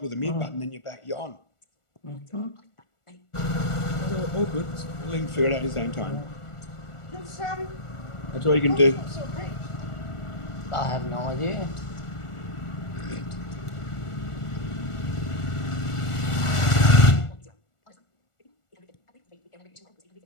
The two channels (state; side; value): late; right; 1.4 ms